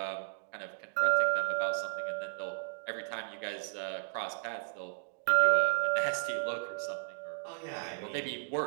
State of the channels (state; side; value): silent; left; digital silence